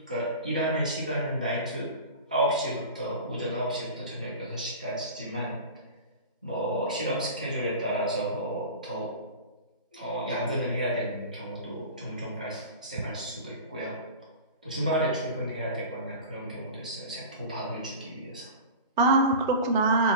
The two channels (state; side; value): inverted; both; correlation -0.34